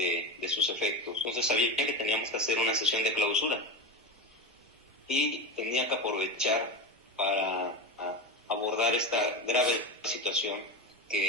sus efectos. Entonces sabía que teníamos que hacer una sesión de clausura y tenía que aprovechar para abordar esta grave situación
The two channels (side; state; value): both; normal; correlation 0.20